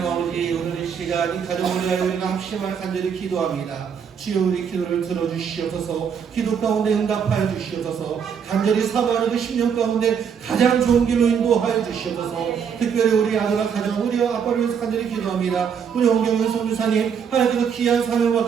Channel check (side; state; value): left; quieter; 7.2 dB